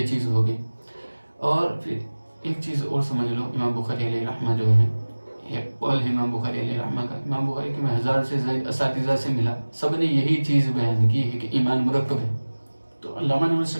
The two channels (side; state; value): both; inverted; correlation -1.00